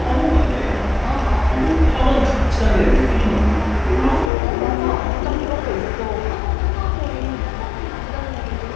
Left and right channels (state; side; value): drops out; right; at 4.3 s